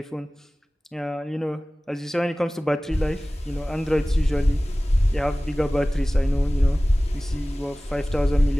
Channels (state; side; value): normal; both; correlation 0.98